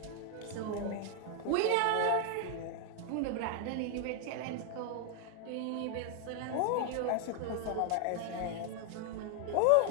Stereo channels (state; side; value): different; both; correlation 0.00